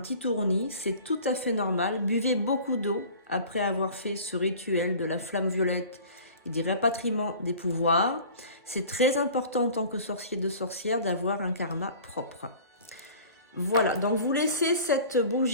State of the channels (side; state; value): both; inverted; correlation -0.44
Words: tournis, c'est tout à fait normal. Buvez beaucoup d'eau après avoir fait ce rituel de la flamme violette et des rapatriements des pouvoirs. C'est très important en tant que sorcier de sorcière d'avoir un karma propre. Voilà, donc vous laissez cette